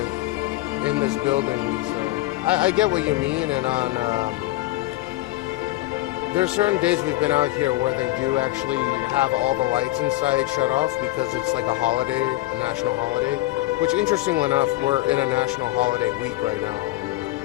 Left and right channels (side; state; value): right; quieter; 18.0 dB